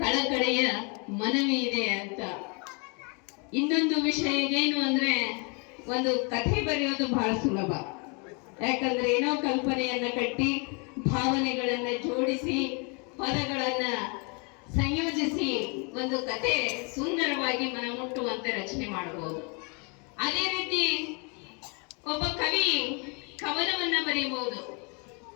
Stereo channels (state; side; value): quieter; right; 33.8 dB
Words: ಮನವಿ ಇದೆ ಅಂತ. ಇನ್ನೊಂದು ವಿಷಯ ಏನು ಅಂದ್ರೆ, ಒಂದು ಕಥೆ ಬರೆಯೋದು ಬಹಳ ಸುಲಭ. ಯಾಕಂದ್ರೆ ಏನೋ ಕಲ್ಪನೆಯನ್ನ ಕಟ್ಟಿ, ಭಾವನೆಗಳನ್ನ ಜೋಡಿಸಿ, ಪದಗಳನ್ನ ಸಂಯೋಜಿಸಿ ಒಂದು ಕಥೆ ಸುಂದರವಾಗಿ ಮನಮುಟ್ಟುವಂತೆ ರಚನೆ ಮಾಡಬಹುದು. ಅದೇ ರೀತಿ ಒಬ್ಬ ಕವಿ ಕವನವನ್ನ ಬರೆಯಬಹುದು,